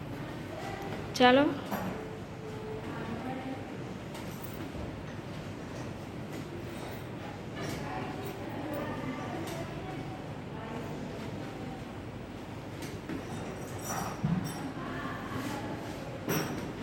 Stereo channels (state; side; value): identical; both; correlation 1.00